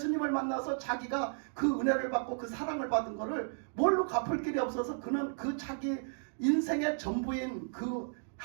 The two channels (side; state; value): left; silent; digital silence